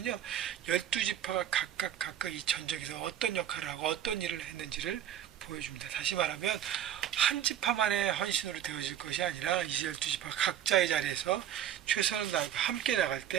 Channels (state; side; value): quieter; left; 10.5 dB